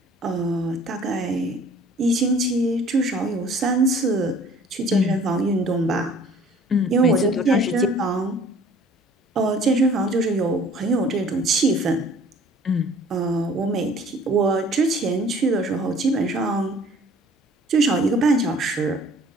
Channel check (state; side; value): normal; both; correlation 0.52